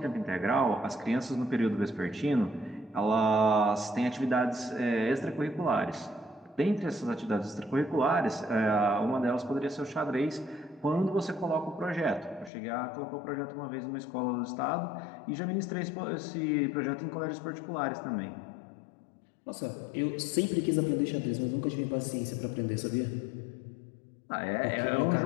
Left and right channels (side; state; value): right; drops out; at 12.5 s